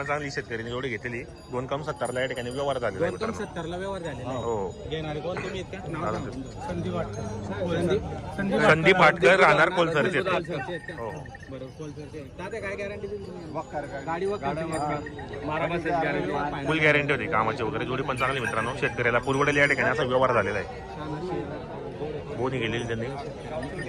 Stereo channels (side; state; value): both; identical; correlation 1.00